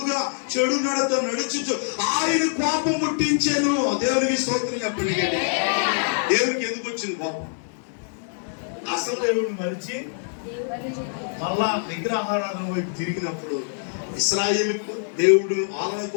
చెడు నడత నడుచుచు ఆయన కోపం పుట్టించాను. దేవునికి స్తోత్రం చెప్పండి. దేవునికి ఎందుకు వచ్చింది కోపం? అసలు దేవుడిని మరిచి మళ్ళా విగ్రహారాధన వైపు తిరిగినప్పుడు ఇశ్రాయేలుకు దేవుడు వాళ్ళ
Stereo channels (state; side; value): silent; right; digital silence